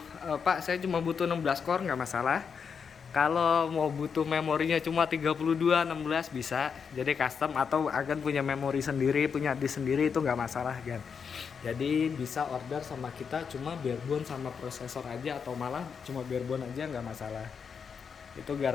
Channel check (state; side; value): quieter; right; 6.3 dB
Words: Pak saya cuma butuh 16 core nggak masalah. Kalau mau butuh memorinya cuma 32 16 bisa. Jadi custom, atau agan punya memori sendiri, punya disk sendiri, itu nggak masalah kan. Jadi bisa order sama kita cuma barebone sama prosesor aja, atau malah cuma barebone aja nggak masalah. Itu